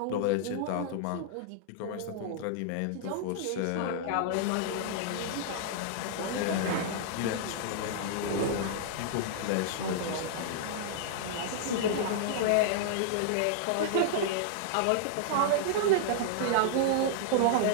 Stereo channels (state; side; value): different; both; correlation -0.01